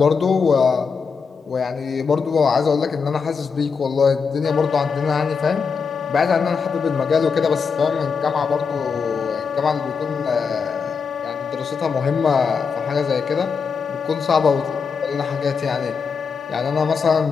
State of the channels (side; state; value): right; quieter; 5.6 dB